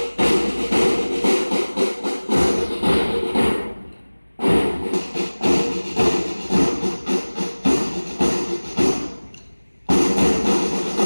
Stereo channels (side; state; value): both; inverted; correlation -1.00